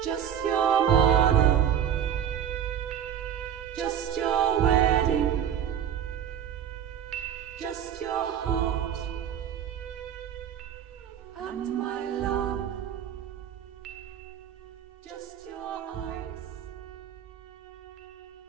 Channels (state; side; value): quieter; left; 9.4 dB